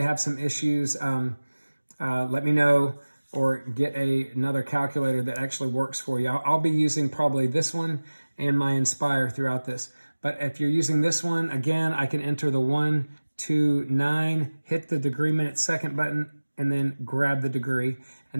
have some issues, let me know, or get another calculator that actually works for you. I'll be using probably this one and my Inspire throughout this. But if you're using this one, again, I can enter the 129, hit the degree, minute, second button, and then grab the degree.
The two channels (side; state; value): both; inverted; correlation -1.00